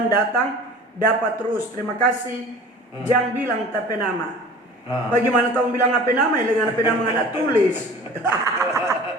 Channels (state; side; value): normal; both; correlation 0.43